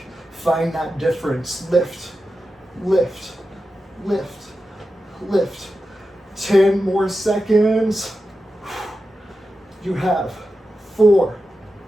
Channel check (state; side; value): normal; both; correlation 0.91